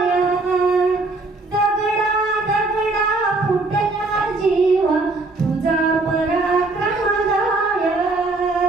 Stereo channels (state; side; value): quieter; left; 3.3 dB